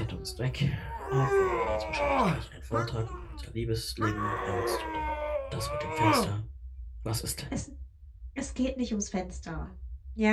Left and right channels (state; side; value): identical; both; correlation 1.00